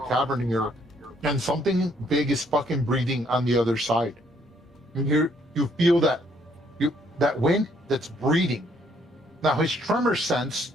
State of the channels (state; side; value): normal; both; correlation 0.67